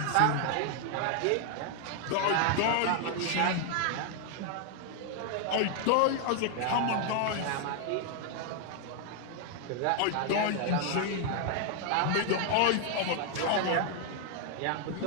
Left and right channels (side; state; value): both; different; correlation 0.00